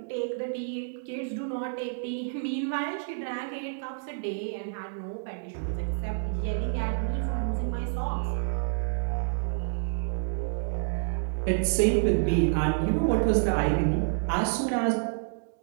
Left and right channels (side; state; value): left; silent; digital silence